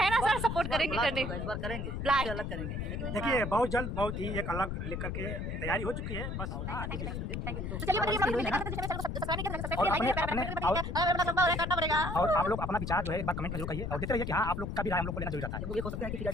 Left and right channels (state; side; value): noise; left; rumble, 4 dB below the sound